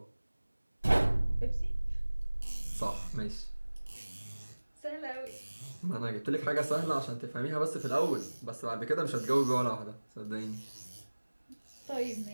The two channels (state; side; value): inverted; both; correlation -1.00